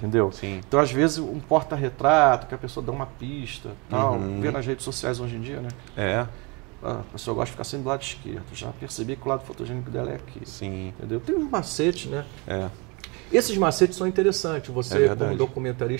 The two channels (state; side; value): quieter; left; 29.1 dB